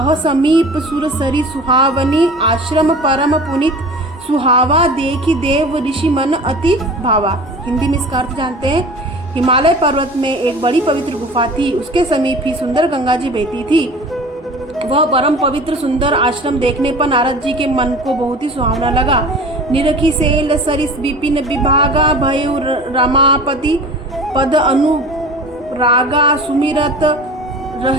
समीप सुरसरी सुहावनी आश्रम परम पुनित सुहावा देखी देव ऋषि मन अति भावा। हिंदी में इसका अर्थ जानते हैं। हिमालय पर्वत में एक बड़ी पवित्र गुफा थी, उसके समीप ही सुंदर गंगा जी बहती थी। वह परम पवित्र सुंदर आश्रम देखने पर नारद जी के मन को बहुत ही सुहावना लगा। निरखी सेल सरिस विपिन विभागा भयु रमापति पद अनुरागा सुमिरत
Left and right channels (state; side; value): normal; both; correlation 0.39